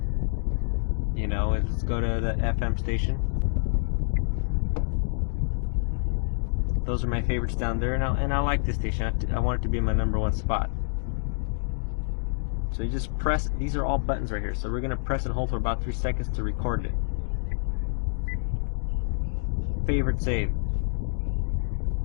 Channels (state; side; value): silent; right; digital silence